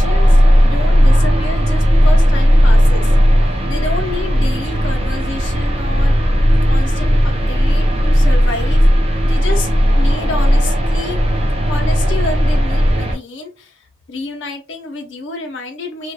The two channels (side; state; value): both; normal; correlation 0.93